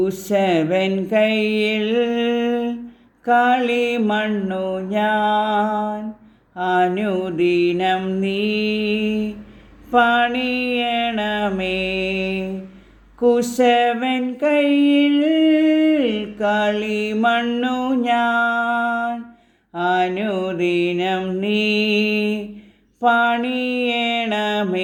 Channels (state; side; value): identical; both; correlation 1.00